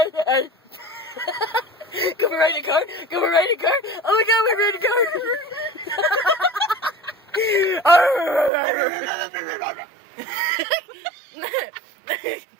Can we ride a car? Can we ride a car? Oh my god, we're riding a car!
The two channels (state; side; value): drops out; left; at 8.5 s